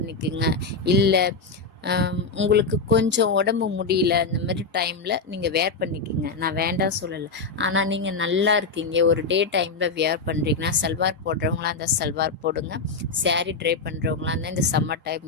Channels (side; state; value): right; quieter; 4.2 dB